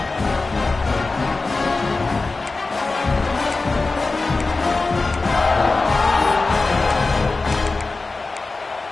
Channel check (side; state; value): right; quieter; 3.6 dB